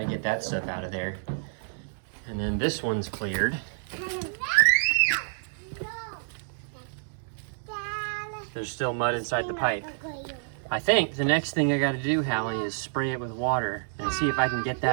get that stuff out of there. And then this one's cleared. There's still mud inside the pipe. I think the next thing I gotta do, Hallie, is spray it with water and see if I can get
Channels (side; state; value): left; silent; digital silence